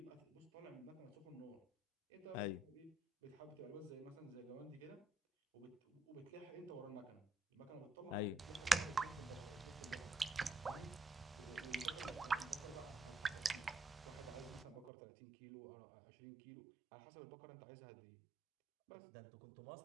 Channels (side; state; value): left; drops out; at 14.9 s